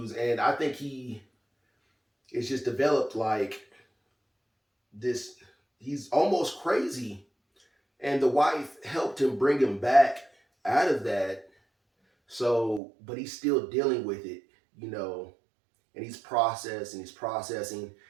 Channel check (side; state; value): left; drops out; at 12.8 s